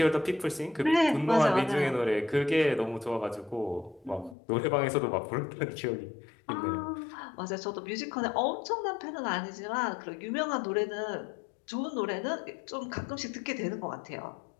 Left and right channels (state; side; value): drops out; right; at 4.4 s